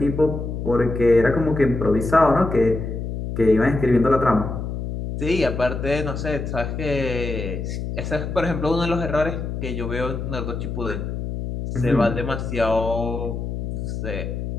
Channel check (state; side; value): noise; left; hum, 5 dB below the sound